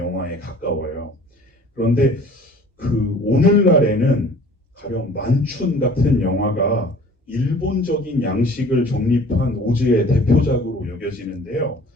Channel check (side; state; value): both; normal; correlation 0.48